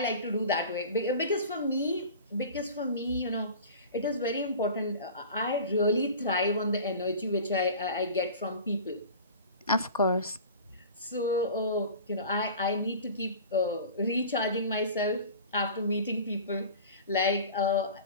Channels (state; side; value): inverted; both; correlation -0.38